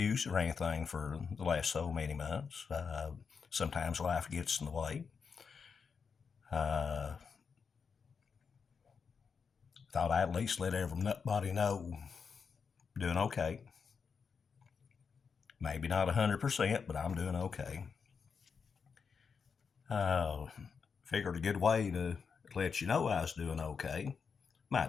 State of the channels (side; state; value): right; quieter; 5.8 dB